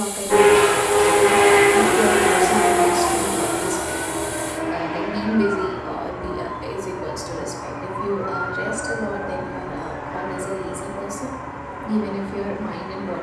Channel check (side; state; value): both; identical; correlation 1.00